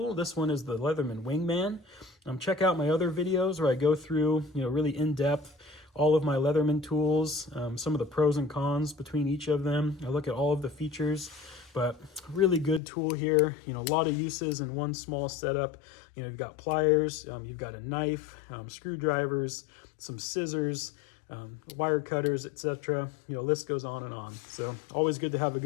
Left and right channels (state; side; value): drops out; right; at 12.8 s